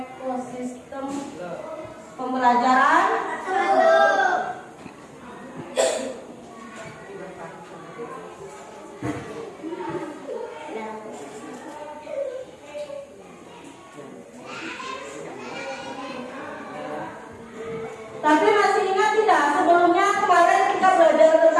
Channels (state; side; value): identical; both; correlation 1.00